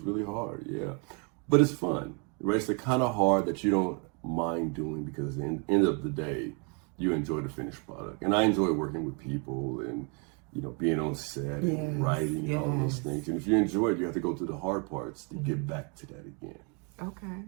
really hard, yeah. But it's fun, right? It's the kind of hard that you don't mind doing, because at the end of the day, you enjoy the finished product. And I enjoy working with people and, you know, being on set and writing and all those things. And if you enjoy it, you have to go through the hard parts to get back to that again. Okay.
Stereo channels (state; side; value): quieter; left; 35.4 dB